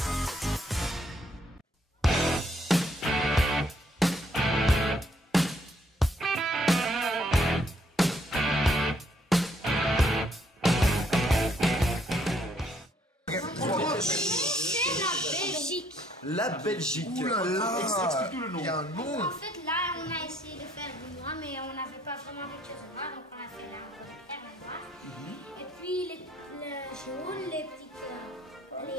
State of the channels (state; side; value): normal; both; correlation 0.67